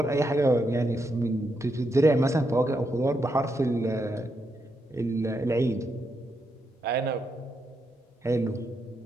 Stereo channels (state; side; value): normal; both; correlation 0.82